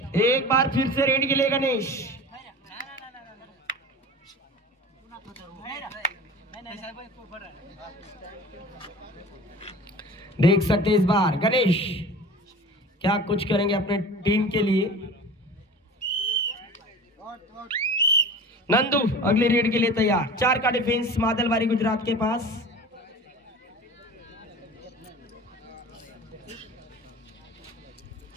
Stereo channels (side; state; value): both; normal; correlation 0.38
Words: एक बार फिर से रेड के लिए गणेश. देख सकते इस बार गणेश क्या कुछ करेंगे अपने टीम के लिए. नंदू अगली रेड के लिए तैयार. 4 का डिफेंस मादलबारी गुजरात के पास.